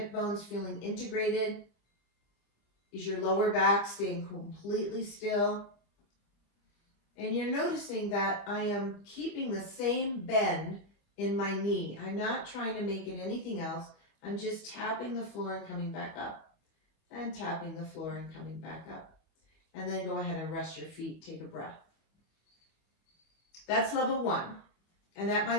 bones feeling integrated? Is your lower back staying completely still? And you're noticing that I am keeping the same bend in my knee. I'm not trying to make it anything else. I'm just tapping the floor and coming back up. And tapping the floor and coming back up. And then go ahead and rest your feet. Take a breath. That's level 1. And that might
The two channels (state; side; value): late; right; 25 ms